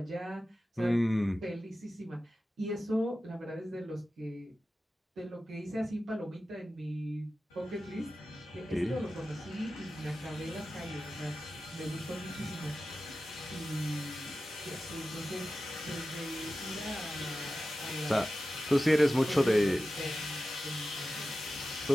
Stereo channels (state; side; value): normal; both; correlation 0.93